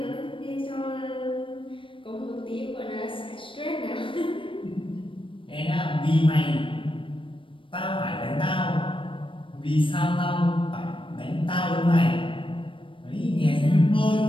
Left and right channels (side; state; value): right; late; 0.25 ms